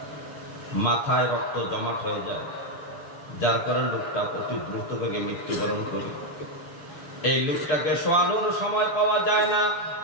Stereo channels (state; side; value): late; right; 7.2 ms